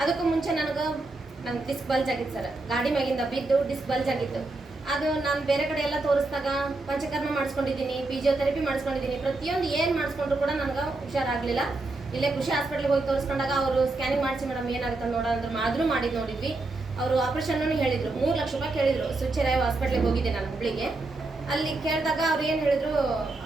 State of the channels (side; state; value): left; quieter; 3.2 dB